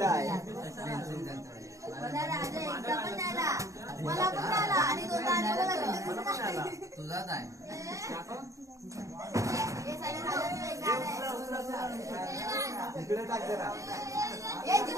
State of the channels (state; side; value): late; left; 0.15 ms